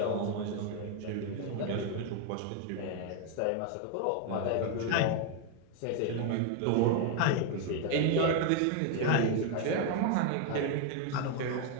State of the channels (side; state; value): both; different; correlation 0.01